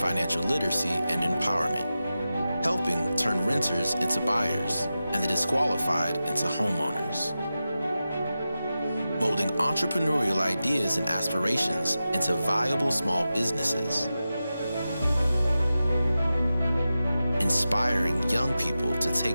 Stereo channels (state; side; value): inverted; both; correlation -0.93